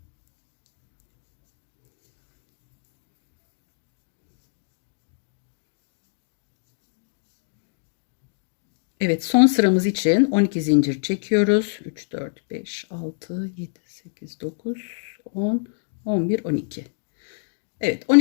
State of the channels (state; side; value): silent; right; digital silence